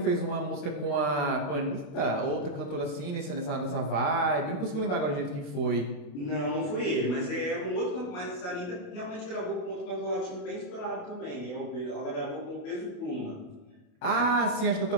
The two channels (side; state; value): right; late; 28 ms